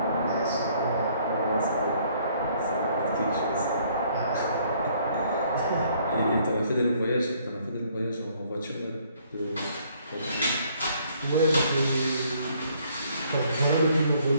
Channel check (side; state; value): both; inverted; correlation -0.64